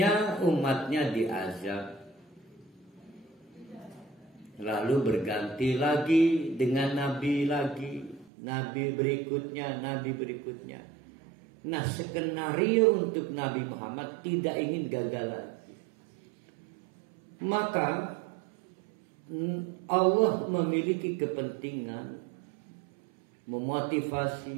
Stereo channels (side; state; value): left; drops out; at 8.3 s